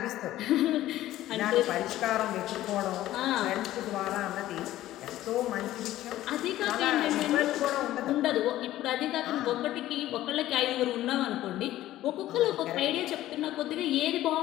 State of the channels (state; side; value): quieter; right; 14.5 dB